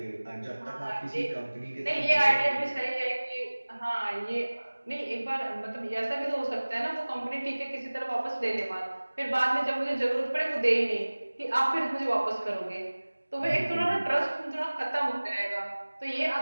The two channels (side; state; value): both; inverted; correlation -1.00